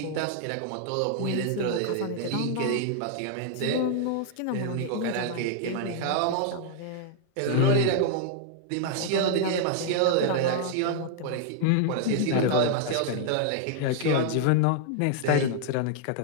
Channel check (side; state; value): both; different; correlation -0.01